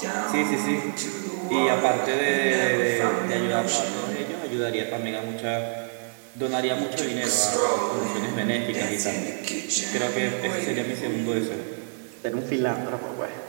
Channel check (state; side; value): silent; left; digital silence